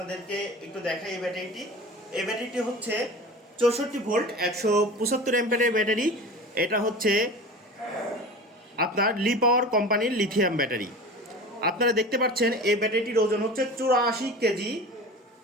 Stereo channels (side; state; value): both; normal; correlation 0.35